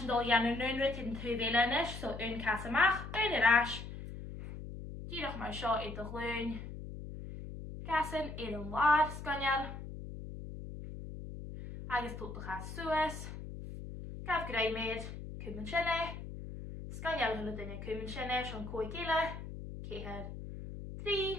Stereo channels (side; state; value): left; noise; hum, 9 dB below the sound